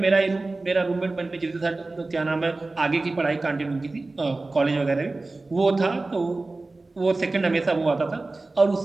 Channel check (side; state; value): left; quieter; 3.3 dB